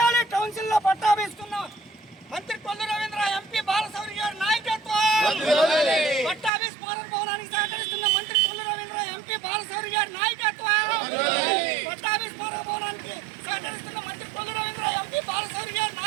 కౌన్సిల్లో పట్టాభి మంత్రి కొల్లు రవీంద్ర ఎంపీ బాలశౌరి గారి నాయకత్వం. పట్టాభి స్మారక భవనానికి సహకరిస్తున్న మంత్రి కొల్లు రవీంద్ర ఎంపీ బాలశౌరి గారి నాయకత్వం. పట్టాభి స్మారక భవనానికి సహకరిస్తున్న మంత్రి కొల్లు రవీంద్ర ఎంపీ బాలశౌరి గారి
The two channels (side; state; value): left; drops out; at 6.5 s